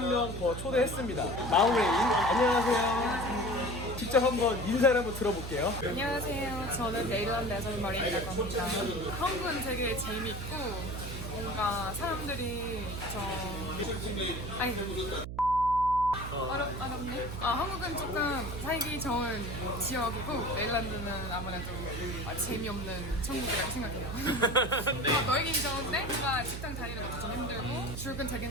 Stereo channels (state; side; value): noise; right; hum, 7 dB below the sound